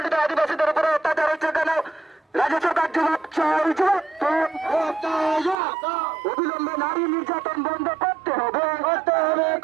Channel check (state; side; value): drops out; left; at 5.6 s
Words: আদিবাসীদের উপরে অত্যাচার হচ্ছে কেন রাজ্য সরকার জবাব চাইছে অবিলম্বে নারী নির্যাতন বন্ধ করতে হবে